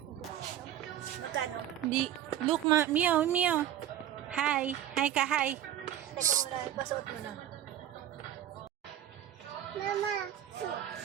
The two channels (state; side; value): quieter; left; 11.5 dB